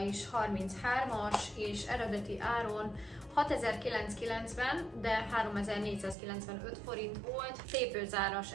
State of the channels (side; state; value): left; drops out; at 6.2 s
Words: 33-as, és eredeti áron 6990, de 3495 forint volt. Tépőzáras,